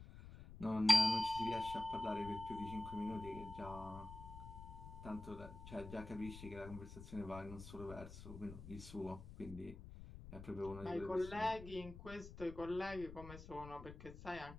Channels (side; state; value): left; noise; rumble, 13 dB below the sound